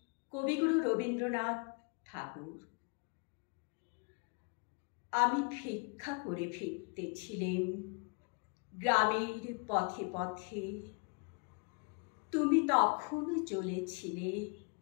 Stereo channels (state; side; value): quieter; right; 36.7 dB